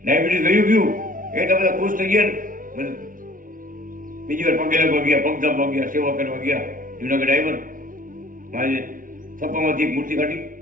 ડાયાબિટીસ ગયું એ તો બધા ખુશ થઈ ગયા ને. બીજી વાર પગે લાગવા ગયા, પગ દાબવા ગયા, સેવા કરવા ગયા. જુનાગઢ આવ્યો મારે થપ્પામાંથી એક મૂર્તિ કાઢી,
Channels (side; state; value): left; late; 0.39 ms